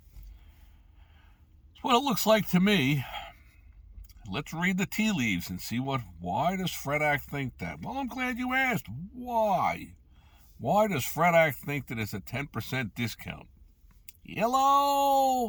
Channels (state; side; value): identical; both; correlation 1.00